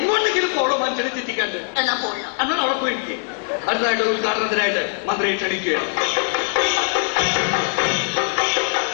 പോകണം മനുഷ്യനെ ചിന്തിക്കണ്ട്. എന്നാ പോകണം. എന്നാൽ അവിടെ പോയിരിക്കും. അടുത്തായിട്ട് ഉദ്ഘാടനത്തിനായിട്ട് മന്ത്രിയെ ക്ഷണിക്കുകയാണ്.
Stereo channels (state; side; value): silent; right; 56 dB below the other